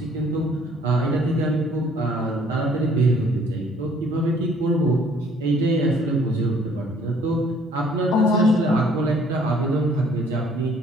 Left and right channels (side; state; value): both; normal; correlation 0.59